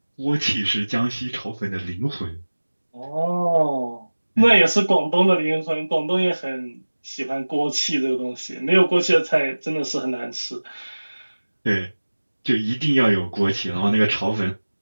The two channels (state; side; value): inverted; both; correlation -1.00